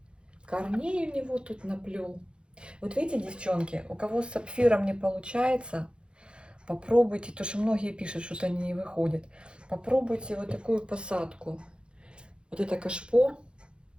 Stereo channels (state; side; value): late; left; 0.054 ms